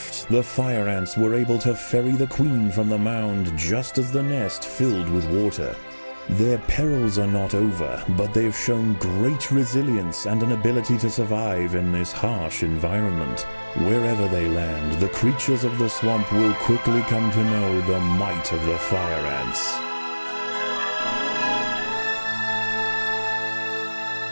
the fire ants were able to ferry the queen from the mound just as the nest filled with water. Their perils are not over, but they've shown great resilience and an ability to survive in this harsh environment. Wherever they land, the creatures of the swamp will quickly come to know the might of the fire ants.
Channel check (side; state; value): both; inverted; correlation -1.00